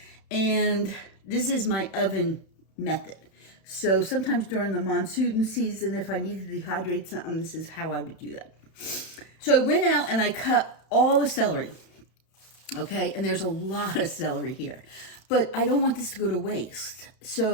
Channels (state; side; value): late; right; 31 ms